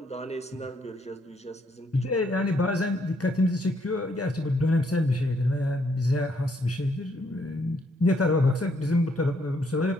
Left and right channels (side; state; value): both; normal; correlation 0.72